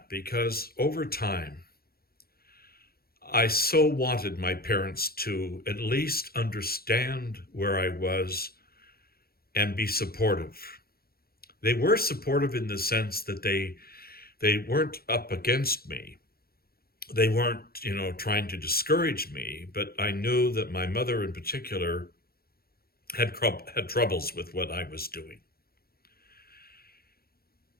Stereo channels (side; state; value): right; late; 0.44 ms